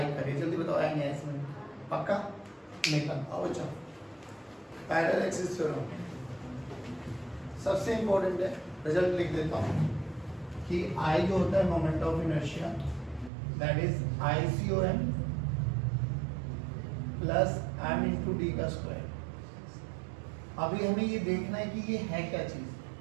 करे। जल्दी बताओ आएंगे इसमें पक्का? निकल आओ। अच्छा, पैरेलल एक्सिस थ्योरम सबसे इंपॉर्टेंट है, रिजल्ट लिख देता हूँ कि I जो होता है moment of inertia that is ICOM plus m into D का स्क्वायर। अभी हमें ये देखना है कि ये है क्या चीज,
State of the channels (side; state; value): left; drops out; at 13.3 s